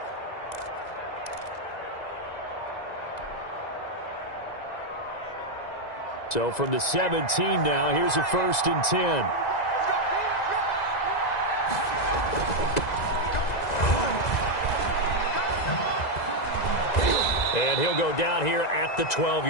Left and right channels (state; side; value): late; right; 2.0 ms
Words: So from the 17 now, here's a 1st and 10. And he'll go down here at the